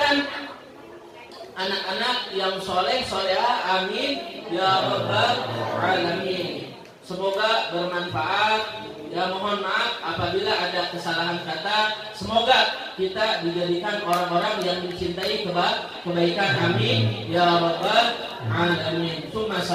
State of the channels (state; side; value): identical; both; correlation 1.00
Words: anak-anak yang soleh solehah. Amin ya rabbal alamin. Semoga bermanfaat. Ya, mohon maaf apabila ada kesalahan kata. Semoga kita dijadikan orang-orang yang mencintai kebaikan. Amin ya rabbal alamin.